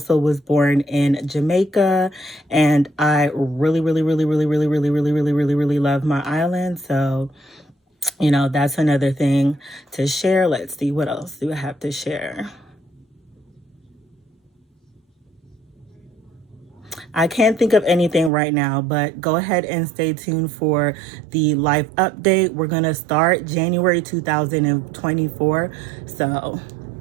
was born in Jamaica, and I really love my island. So, you know, that's another thing to share. Let's see, what else do I have to share? I can't think of anything right now, but go ahead and stay tuned for the life update. We're going to start January 2024. So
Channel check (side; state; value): left; drops out; at 18.3 s